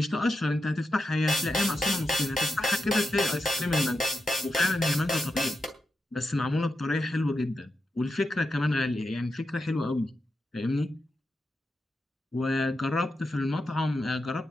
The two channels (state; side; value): normal; both; correlation 0.88